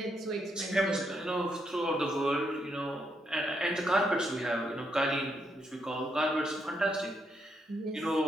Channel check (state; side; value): normal; both; correlation 0.78